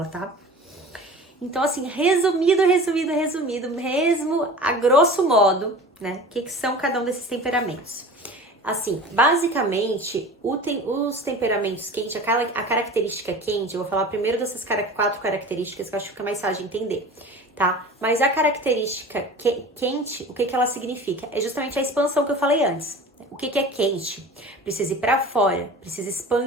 tá? Então, assim, resumido, mesmo a grosso modo, né? O que são cada um desses temperamentos? Assim, basicamente, os temperamentos quentes, a característica quente, eu vou falar primeiro dessas 4 características que eu acho que fica mais fácil de entender, tá? Mas a característica quente, o que ela significa? É justamente a expansão que eu falei antes. O que é quente? Precisa ir para fora, precisa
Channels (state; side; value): normal; both; correlation 0.38